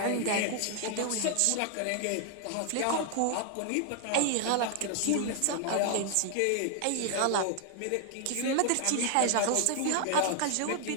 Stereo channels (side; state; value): both; different; correlation 0.00